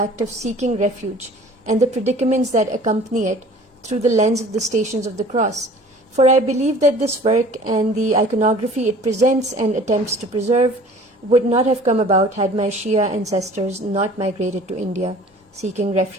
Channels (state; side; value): normal; both; correlation 0.48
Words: of seeking refuge and the predicaments that accompany it through the lens of the Stations of the Cross, for I believe that this work and the iconography it presents and attempts to preserve would not have come about had my Shia ancestors not migrated to India, seeking